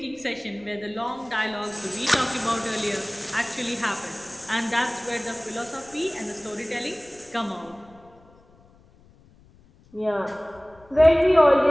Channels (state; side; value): noise; left; rumble, 27 dB below the sound